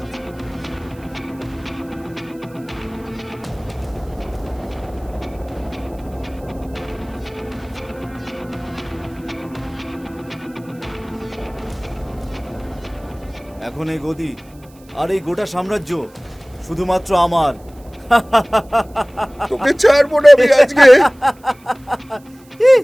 এখন এই গদি আর এই গোটা সাম্রাজ্য শুধুমাত্র আমার। তোকে ছাড়বো না আমি আজকে।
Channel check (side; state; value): right; noise; hiss, 28 dB below the sound